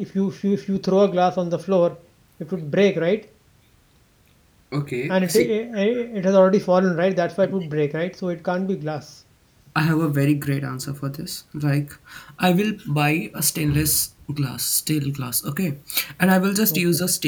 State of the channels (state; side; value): identical; both; correlation 1.00